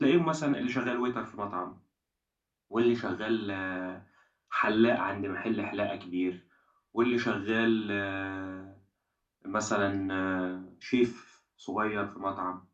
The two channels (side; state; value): both; identical; correlation 1.00